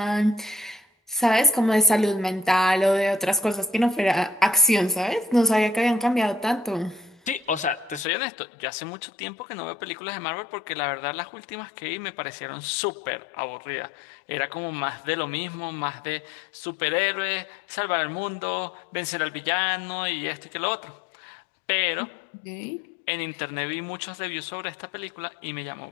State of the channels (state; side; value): drops out; right; at 8.1 s